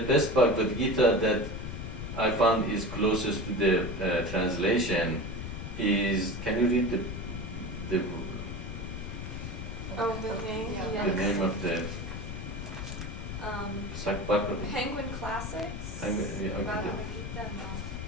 Bhagavad Gita that I found is closest to the translation is, can you read the Oh, the name, Yeah. The yes. name of the Um, Sakbaka? Penguin Classics. Yeah, okay. Bhagavad Gita,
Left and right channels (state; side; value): noise; left; rumble, 6 dB below the sound